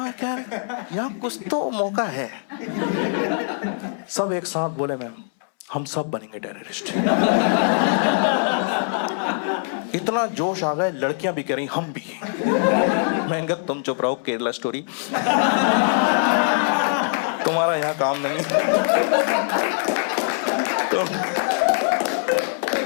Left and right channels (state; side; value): silent; right; 64 dB below the other